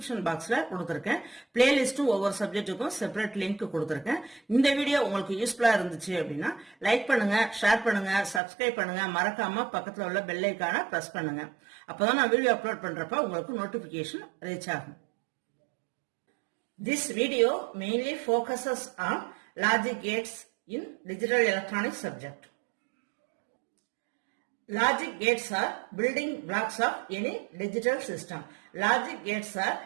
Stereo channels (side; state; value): left; drops out; at 8.4 s